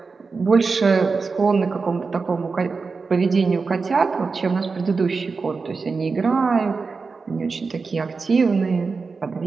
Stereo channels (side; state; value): left; quieter; 4.6 dB